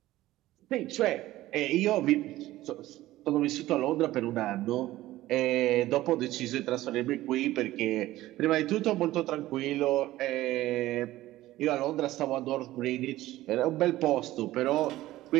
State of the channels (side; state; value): left; quieter; 16.0 dB